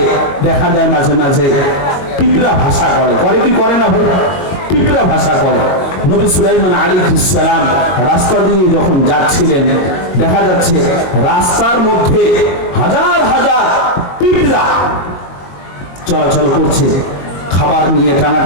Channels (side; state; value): right; late; 22 ms